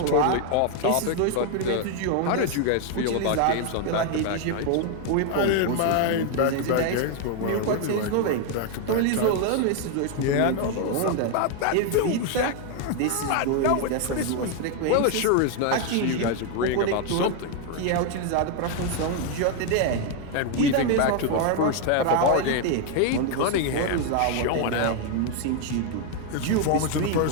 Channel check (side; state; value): both; different; correlation 0.00